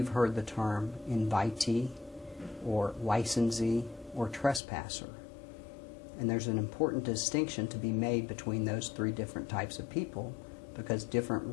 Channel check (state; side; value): drops out; right; at 4.6 s